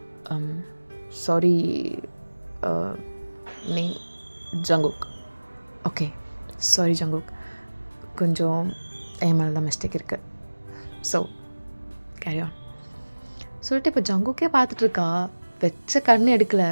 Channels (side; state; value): both; inverted; correlation -1.00